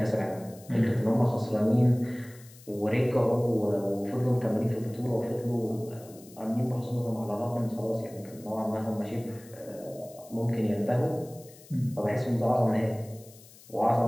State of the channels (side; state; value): left; noise; hiss, 22 dB below the sound